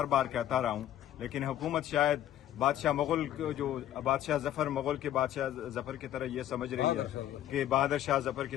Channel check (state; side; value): quieter; right; 12.0 dB